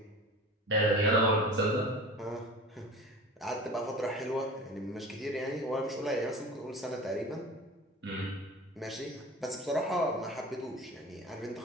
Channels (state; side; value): normal; both; correlation 0.36